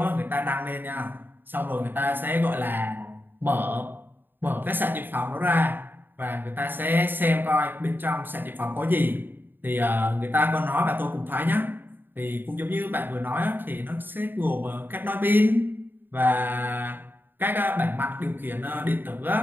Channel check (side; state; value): left; late; 0.094 ms